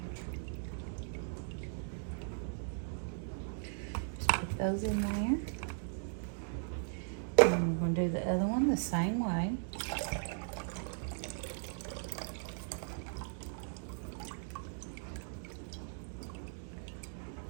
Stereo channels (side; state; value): left; silent; digital silence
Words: Just put those in there. And we're going to do the other one the same way.